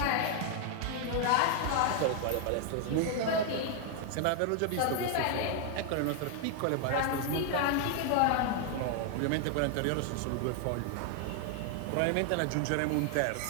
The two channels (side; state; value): both; different; correlation 0.00